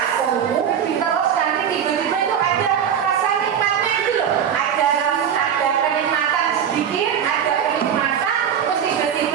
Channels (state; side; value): quieter; left; 8.5 dB